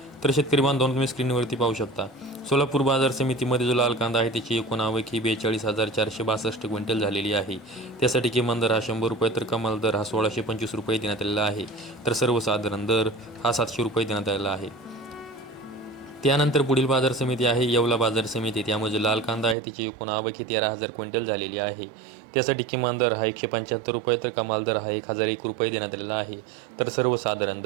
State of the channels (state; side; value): drops out; left; at 19.6 s